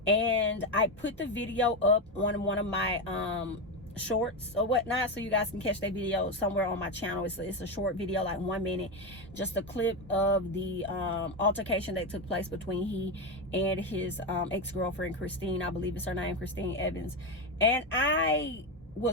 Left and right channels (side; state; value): both; normal; correlation 0.12